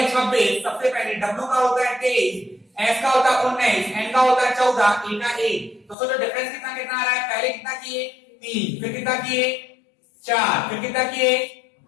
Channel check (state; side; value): drops out; right; at 6.0 s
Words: 26, सबसे पहले W का होता है 23, S का होता है 19, N का होता है 14, E का 1। तो सोचो डिफरेंस कितना कितना आ रहा है, पहले कितना किए 3, फिर कितना किए 4, फिर कितना किए